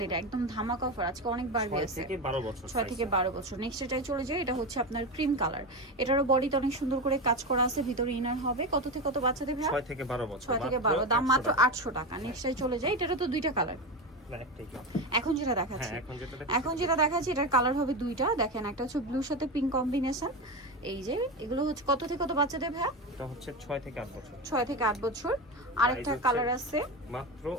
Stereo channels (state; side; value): normal; both; correlation 0.18